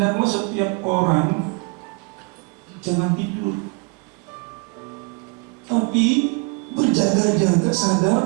setiap orang jangan tidur, tapi berjaga-jaga,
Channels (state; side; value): quieter; left; 31.0 dB